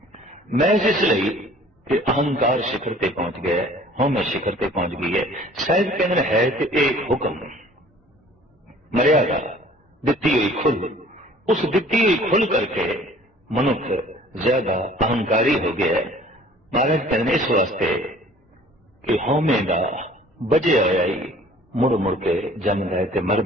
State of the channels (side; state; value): both; normal; correlation 0.51